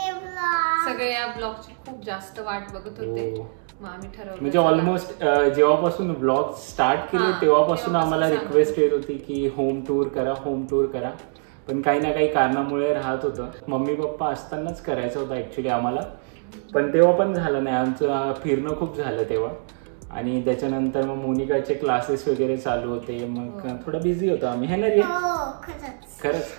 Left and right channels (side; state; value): left; silent; 63 dB below the other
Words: blog. सगळे या ब्लॉगची खूप जास्त वाट बघत होते. मग आम्ही ठरवलं म्हणजे ऑलमोस्ट जेव्हापासून ब्लॉग स्टार्ट केले तेव्हापासून आम्हाला रिक्वेस्ट येत होती की होम टूर करा. पण काही ना काही कारणामुळे राहत होतं. मम्मी पप्पा असतानाच करायचं होतं ऍक्च्युली आम्हाला, पण तेव्हा पण झालं नाही. आमचं फिरणं खूप झालं तेव्हा. आणि त्याच्यानंतर मग मोनिकाचे क्लासेस वगैरे चालू होते, मग थोडं बिझी होतो आम्ही. है ना रे?